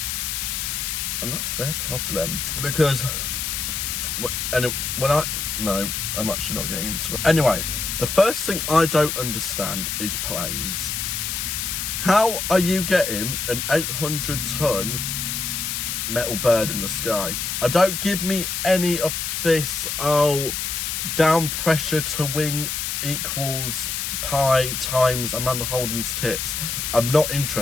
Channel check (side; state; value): left; noise; hiss, 2 dB below the sound